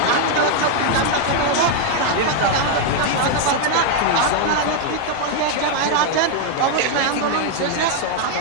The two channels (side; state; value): both; different; correlation 0.00